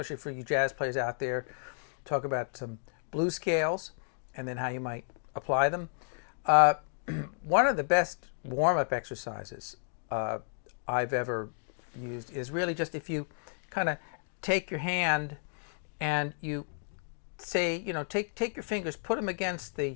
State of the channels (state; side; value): silent; right; digital silence